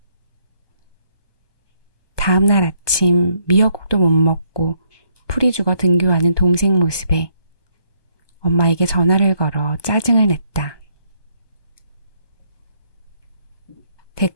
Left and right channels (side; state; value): right; late; 1.2 ms